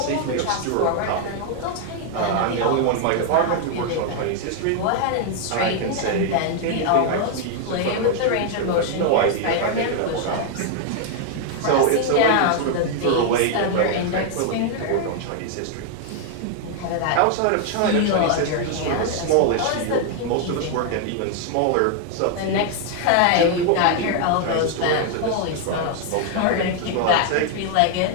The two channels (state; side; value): different; both; correlation 0.00